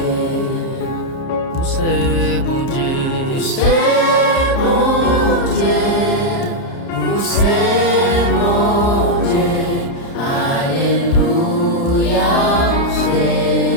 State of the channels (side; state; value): right; late; 30 ms